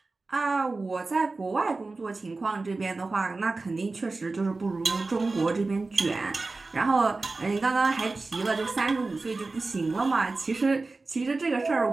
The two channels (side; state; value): left; quieter; 3.6 dB